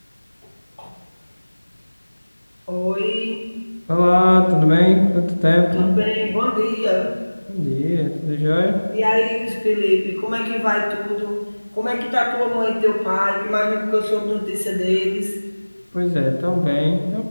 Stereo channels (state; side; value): inverted; both; correlation -1.00